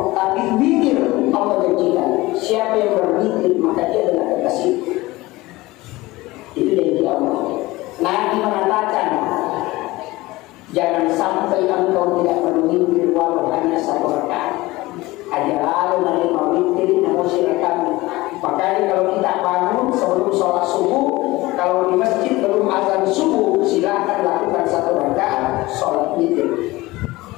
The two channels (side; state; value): right; quieter; 19.8 dB